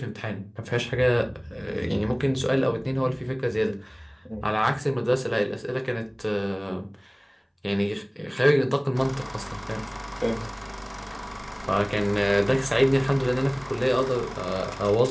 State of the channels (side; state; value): both; identical; correlation 1.00